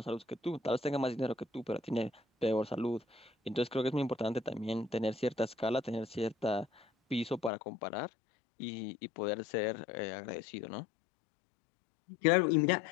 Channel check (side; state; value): right; drops out; at 7.5 s